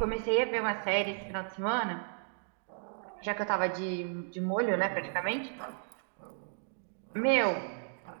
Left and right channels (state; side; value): silent; left; digital silence